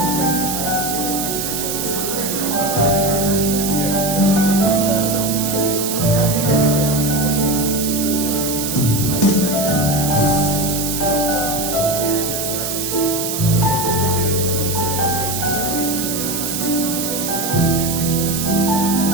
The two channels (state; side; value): noise; right; hiss, 3 dB below the sound